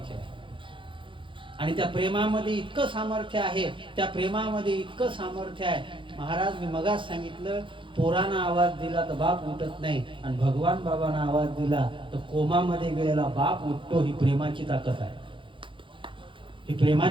आहे. आणि त्या प्रेमामध्ये इतकं सामर्थ्य आहे, त्या प्रेमामध्ये इतकं सामर्थ्य आहे. महाराज मी मगाच सांगितलं, पोरांना आवाज दिला तर बाप उठत नाही, आणि भगवान बाबांना आवाज दिला तर कोमामध्ये गेलेला बाप उठतो. ही प्रेमाची ताकद आहे, ही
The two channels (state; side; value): late; left; 0.25 ms